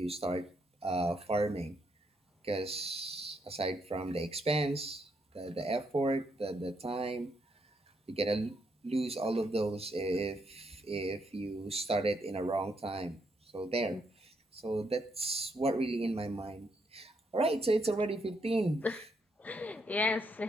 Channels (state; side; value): normal; both; correlation 0.76